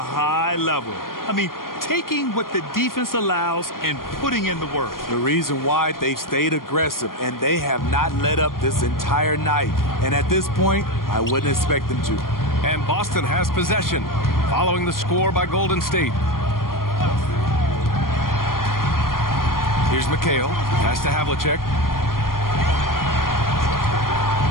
level. I mean, taking what the defense allows and putting in the work. The reason why they've stayed aggressive, and they have not let up this entire night. And at this point, I wouldn't expect them to. And Boston has possession, following the score by Golden State. Here's McHale. Pass to Havlicek.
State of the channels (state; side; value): late; right; 0.91 ms